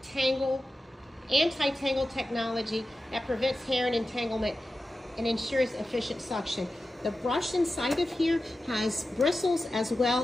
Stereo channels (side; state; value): both; normal; correlation 0.93